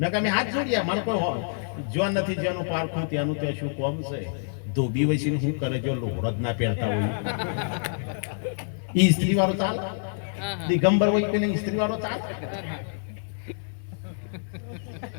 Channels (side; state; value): right; silent; digital silence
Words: અમે હાથ જોડ્યા મને કોઈ જ્યાં નથી જ્યાંનું પારખું ત્યાંનું ત્યાં શું કોમ છે. ધોબી વસીને શું કરે જો લોહરત ના પહેરતા હોય ઈ સ્ત્રી વાળો ચાલે, દિગંબર હોય કે સ્ત્રી વાળો ચાલે.